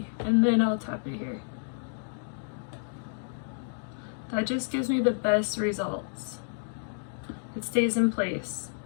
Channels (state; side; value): silent; right; digital silence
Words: and then I'll tap it here. That just gives me the best results. It stays in place.